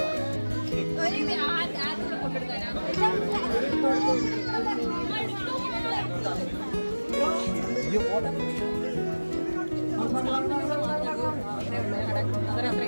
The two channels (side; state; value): both; inverted; correlation -1.00